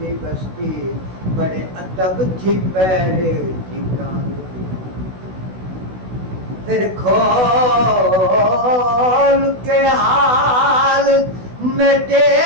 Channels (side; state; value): left; late; 16 ms